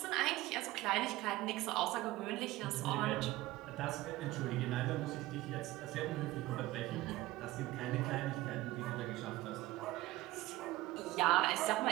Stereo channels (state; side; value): quieter; left; 17.8 dB